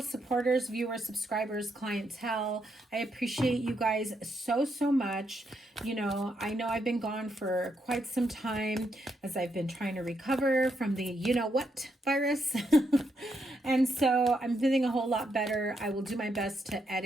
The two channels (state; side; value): normal; both; correlation 0.79